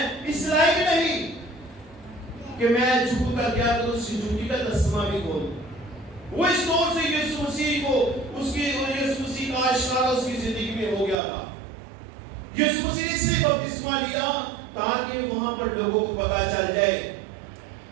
اس لائق نہیں کہ میں جھوٹ کر گیا تو اس کی جھوٹی کا تسمہ بھی کھول۔ وہ اس طور سے یسوع مسیح کو یسوع مسیح کا اشارہ اس کی زندگی میں ہو گیا تھا۔ یسوع مسیح سے بپتسمہ لیا تاکہ وہاں پر لوگوں کو پتا چل جائے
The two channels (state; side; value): drops out; left; at 11.2 s